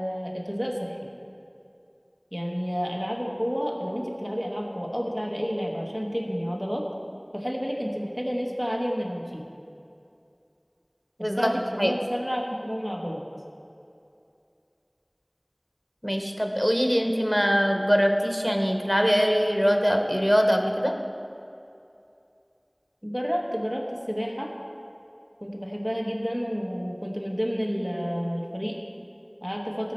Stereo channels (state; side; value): identical; both; correlation 1.00